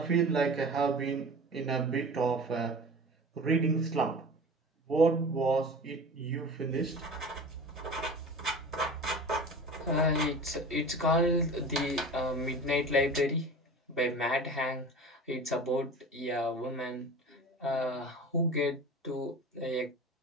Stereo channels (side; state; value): both; normal; correlation 0.37